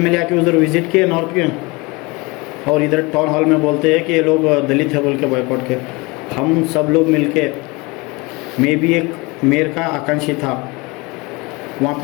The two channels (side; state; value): right; quieter; 25.6 dB